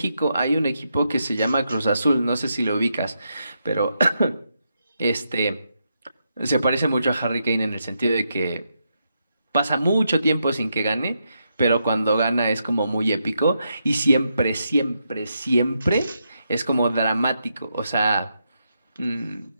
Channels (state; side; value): inverted; both; correlation -0.82